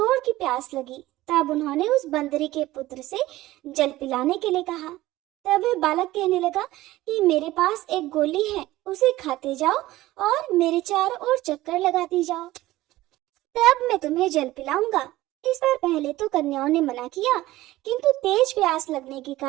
की प्यास लगी। तब उन्होंने उस बंदरी के पुत्र से जल पिलाने के लिए कहा। तब वह बालक कहने लगा कि मेरे पास एक गोली है, उसे खाते जाओ और मेरे चारों ओर चक्कर लगाती जाओ, तब मैं तुम्हें जल पिलाऊंगा। इस बार पहले तो कन्याओं ने मना किया, किंतु तेज प्यास लगने के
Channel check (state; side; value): quieter; left; 16.8 dB